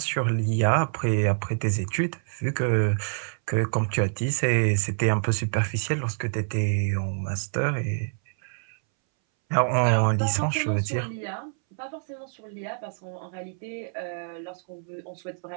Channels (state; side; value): silent; left; 60 dB below the other